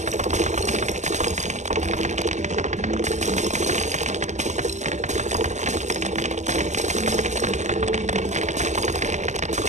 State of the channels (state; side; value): late; left; 0.34 ms